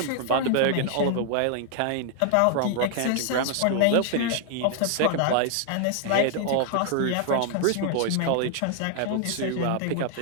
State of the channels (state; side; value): different; both; correlation 0.00